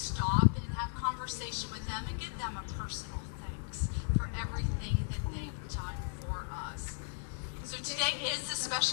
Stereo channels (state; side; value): silent; right; digital silence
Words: and have conversation with them and give them a personal thanks for everything that they've done for us. So today is a